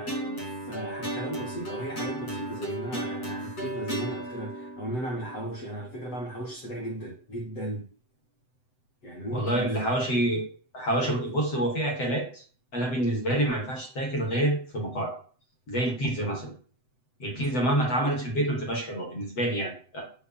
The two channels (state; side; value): late; right; 7.9 ms